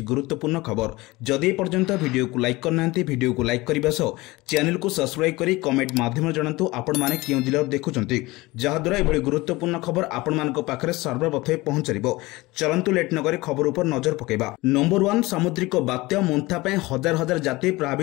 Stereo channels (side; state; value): right; quieter; 21.1 dB